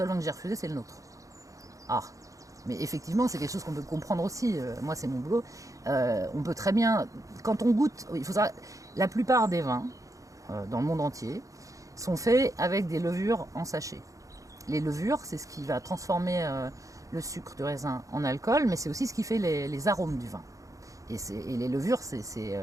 vin que j'ai refusé, c'est le nôtre. Ah, mais effectivement, c'est quelque chose qu'on peut comprendre aussi. Moi, c'est mon boulot. On peut très bien, quand on goûte, il faut savoir, la plupart des vins dans le monde entier, sont faits avec des levures en sachet. Les levures, c'est ce qui va transformer le sucre du raisin en alcool, mais c'est aussi ce qui fait les arômes du vin. Et les levures,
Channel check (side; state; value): left; late; 0.16 ms